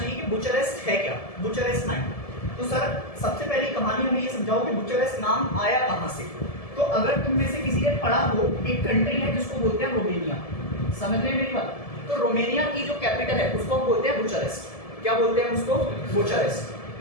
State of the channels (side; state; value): right; late; 1.7 ms